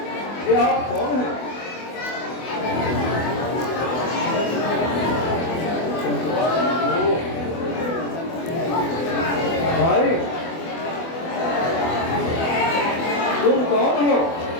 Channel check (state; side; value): late; right; 24 ms